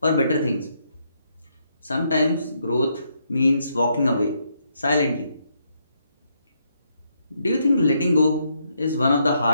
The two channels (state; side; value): inverted; both; correlation -0.76